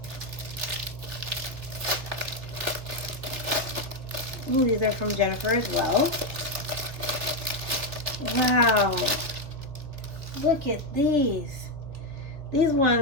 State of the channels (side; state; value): left; late; 3.2 ms